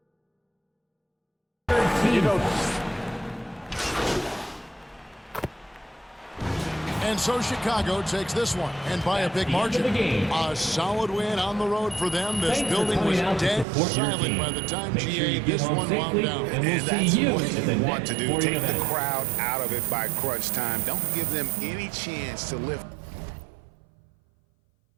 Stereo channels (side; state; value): left; drops out; at 13.7 s